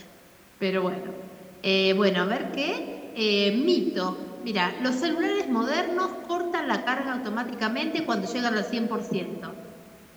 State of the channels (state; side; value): identical; both; correlation 1.00